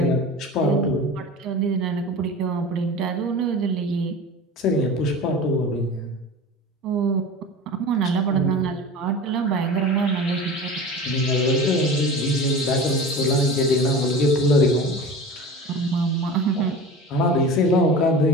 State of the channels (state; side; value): normal; both; correlation 0.34